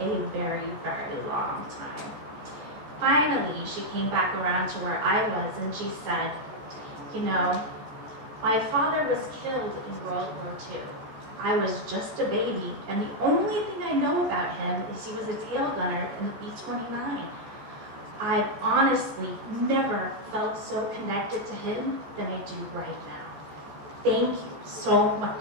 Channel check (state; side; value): late; left; 14 ms